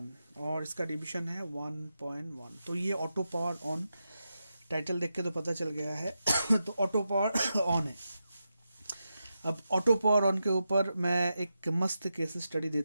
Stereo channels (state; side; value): inverted; both; correlation -0.88